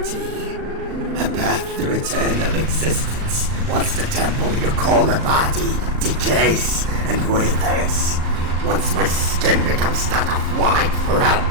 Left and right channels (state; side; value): late; left; 38 ms